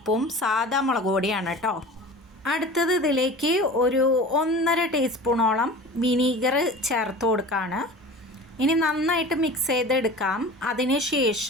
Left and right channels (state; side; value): normal; both; correlation 0.38